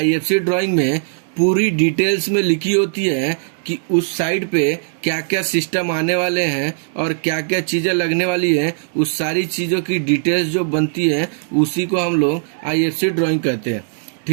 ड्राइंग में पूरी डिटेल्स में लिखी होती है कि उस साइट पे क्या क्या सिस्टम आने वाले हैं और क्या क्या चीजें लगने वाली है। उस सारी चीजों की डिटेल्स जो बनती है उसी को हम लोग IFC ड्राइंग कहते हैं,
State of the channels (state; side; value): silent; left; digital silence